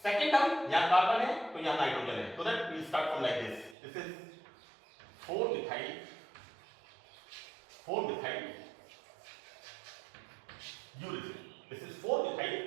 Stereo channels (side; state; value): left; drops out; at 3.8 s